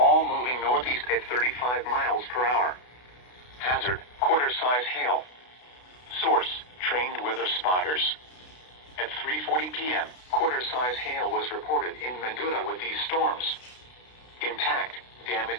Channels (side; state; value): right; late; 32 ms